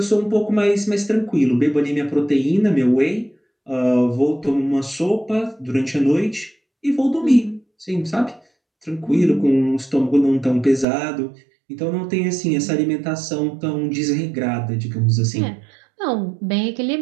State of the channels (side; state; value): left; drops out; at 10.9 s